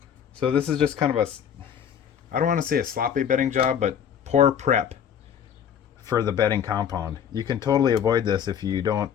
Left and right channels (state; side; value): quieter; right; 8.5 dB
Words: So this is just kind of a, I don't want to say a sloppy bedding job, but poor prep for the bedding compound. You can totally avoid this if you don't